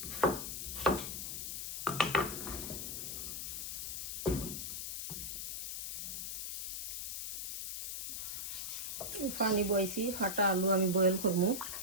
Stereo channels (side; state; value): left; noise; hiss, 4 dB below the sound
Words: পানি বইছি, ফাটা আলু আমি বয়েল করবো।